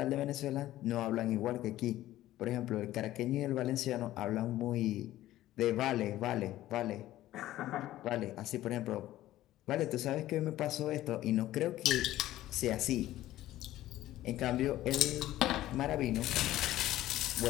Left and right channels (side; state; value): right; quieter; 14.7 dB